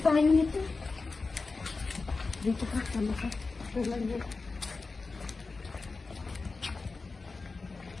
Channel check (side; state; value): right; quieter; 4.0 dB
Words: nito. Dito ka, sama ka.